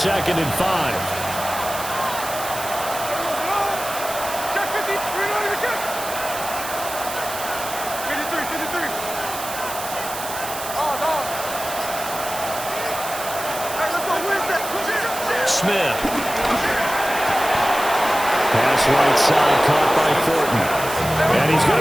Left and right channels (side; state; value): right; noise; hiss, 9 dB below the sound